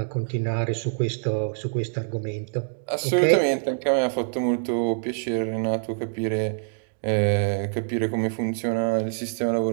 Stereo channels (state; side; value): silent; left; digital silence